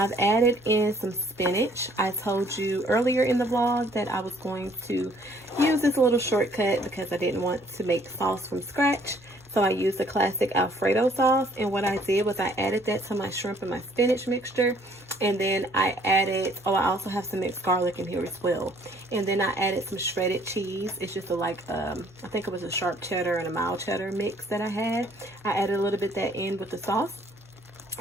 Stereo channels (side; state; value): right; noise; hum, 30 dB below the sound